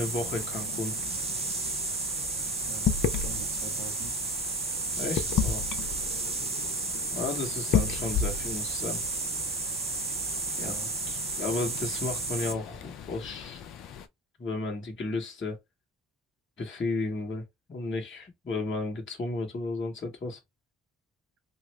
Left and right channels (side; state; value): both; normal; correlation 0.34